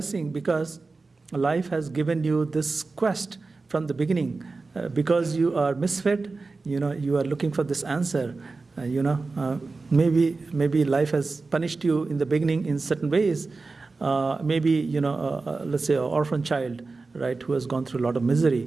because life has given you this quest from the beginning. Because you are misfit, you are looking for this answer. Maybe life has punished you in the beginning in certain ways. Maybe, let's say an orphan child, right, who has gone through a lot of misery,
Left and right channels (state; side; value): quieter; left; 3.9 dB